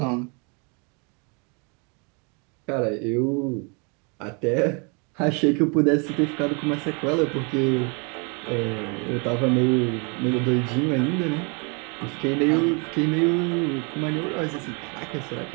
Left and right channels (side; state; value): left; quieter; 34.0 dB